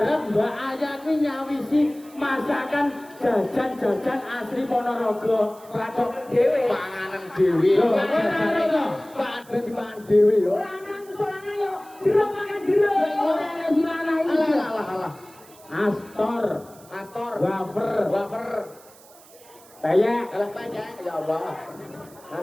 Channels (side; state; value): right; noise; hiss, 24 dB below the sound